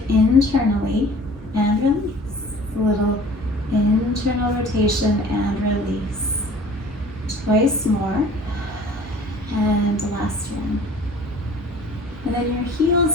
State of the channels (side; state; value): both; normal; correlation 0.48